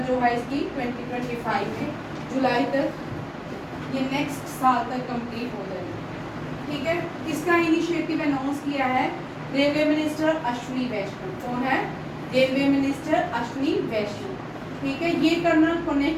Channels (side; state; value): both; identical; correlation 1.00